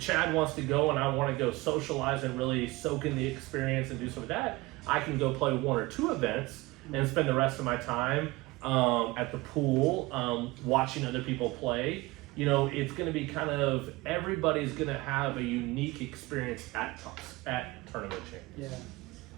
Chad wants to go and I want to go socialize and really soak in the experience and do some of that, I can go play one or two events and spend the rest of my time at the pool watching other people play you know, it's going to be kind of everybody's going to have a unique experience at tournament champions. Yeah.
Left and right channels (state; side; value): quieter; left; 21.5 dB